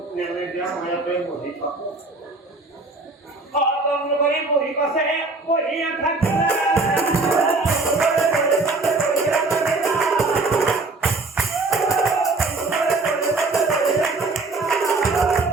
নেমে দিয়া মায়াতে বহি থাক করে বহি পাশে বহিয়া থাকে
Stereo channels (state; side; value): quieter; left; 3.5 dB